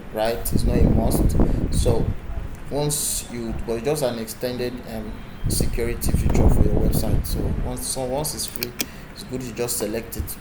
right? It's not a must. So but it's just an extended security feature for your website. So once it's free, it's good to just select it.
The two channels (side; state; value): both; identical; correlation 1.00